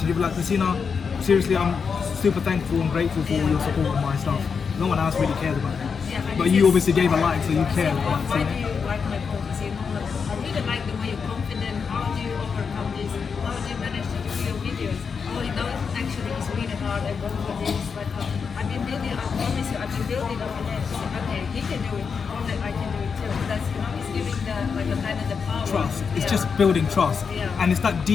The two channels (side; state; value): right; quieter; 5.9 dB